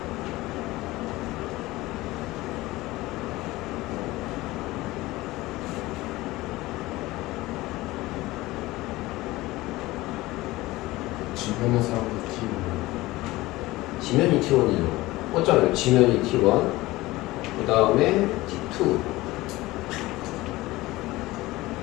주변의 사람들 지면이 T1이죠. 꽂잖아요. 지면이 T1 그 다음에 T2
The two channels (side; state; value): right; quieter; 19.0 dB